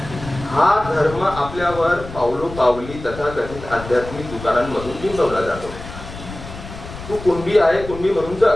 हा धर्म आपल्यावर पावलो पावली तथाकथित आध्यात्मिक दुकानांमधून बिंबवला जातो. तू कुणबी आहे, कुणबी म्हणून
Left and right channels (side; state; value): left; noise; rumble, 12 dB below the sound